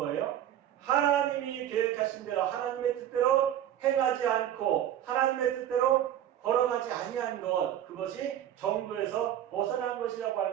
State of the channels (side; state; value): left; quieter; 11.2 dB